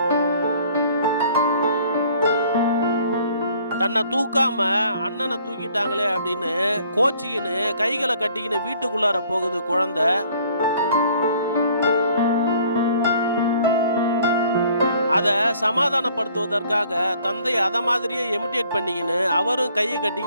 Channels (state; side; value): inverted; both; correlation -0.58